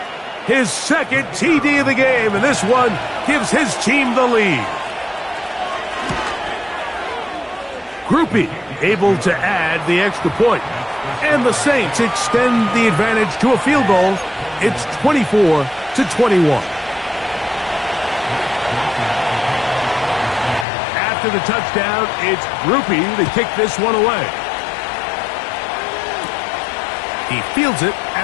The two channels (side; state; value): right; drops out; at 20.7 s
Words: His 2nd TD of the game, and this one gives his team the lead. Grupe able to add the extra point. And the Saints extend the advantage to a field goal. It's 24-21. After the touchdown, it's Grupe to kick this one away. He fields it